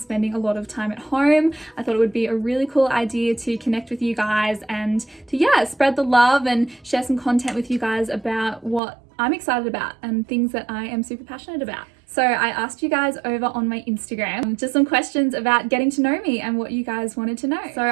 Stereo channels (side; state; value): left; drops out; at 8.8 s